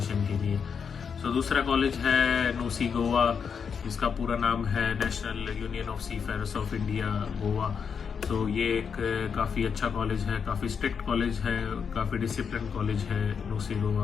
के लिए। सो दूसरा कॉलेज है नूसी गोवा, इसका पूरा नाम है national union of seafarers of India Goa. तो ये एक काफ़ी अच्छा कॉलेज है, काफ़ी स्ट्रिक्ट कॉलेज है, काफ़ी डिसिप्लिन कॉलेज है नूसी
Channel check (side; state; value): right; quieter; 6.5 dB